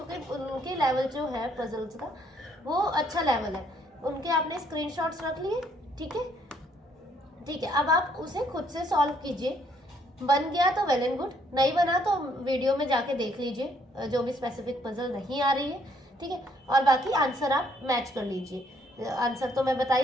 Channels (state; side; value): normal; both; correlation 0.67